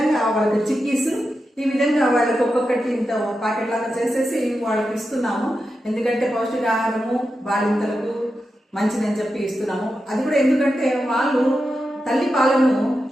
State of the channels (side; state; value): both; normal; correlation 0.89